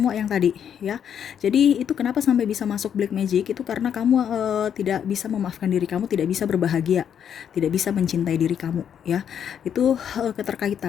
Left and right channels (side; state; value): right; quieter; 8.6 dB